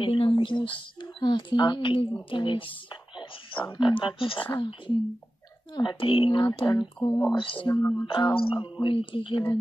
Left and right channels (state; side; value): normal; both; correlation 0.94